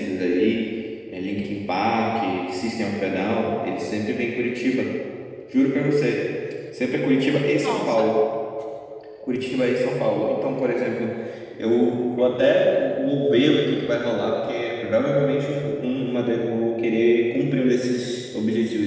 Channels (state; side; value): identical; both; correlation 1.00